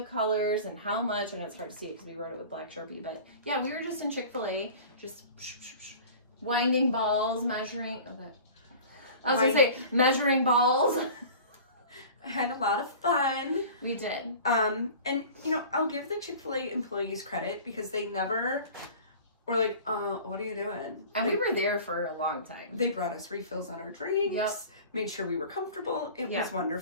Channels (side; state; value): both; inverted; correlation -0.41